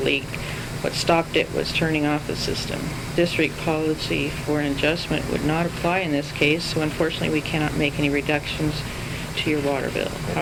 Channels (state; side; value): identical; both; correlation 1.00